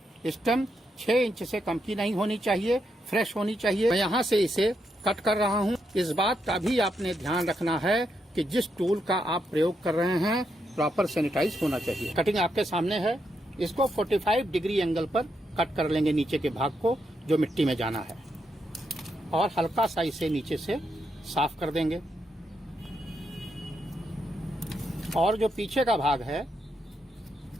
स्टम्प 6 इंच से कम की नहीं होनी चाहिए, फ्रेश होनी चाहिए। मैं यहाँ से इसे कट कर रहा हूँ। इस बात का भी आपने ध्यान रखना है कि जिस टूल का आप प्रयोग कर रहे हैं प्रॉपर सैनिटाइज होना चाहिए। कटिंग आपके सामने है। इसको 45 डिग्री एंगल पर कट कर लेंगे नीचे के भाग को जो मिट्टी में जाना है, और हल्का सा इसे नीचे से साफ कर देंगे। और जो पीछे का भाग है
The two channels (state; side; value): normal; both; correlation 0.81